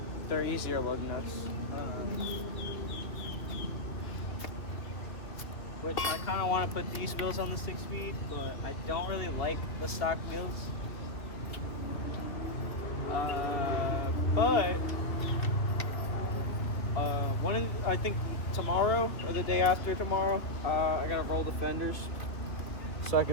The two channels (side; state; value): right; late; 2.4 ms